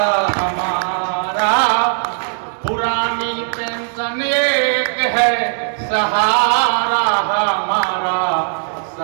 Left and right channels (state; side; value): silent; left; digital silence